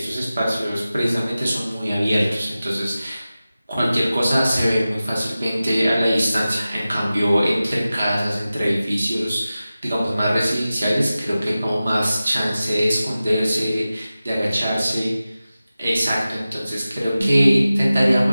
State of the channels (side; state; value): both; inverted; correlation -0.95